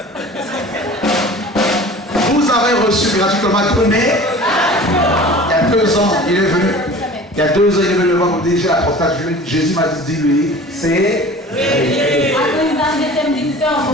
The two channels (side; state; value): both; normal; correlation 0.42